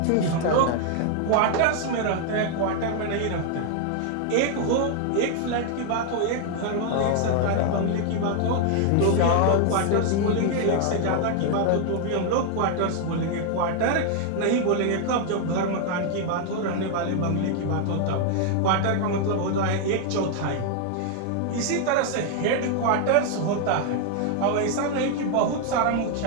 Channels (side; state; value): both; different; correlation 0.00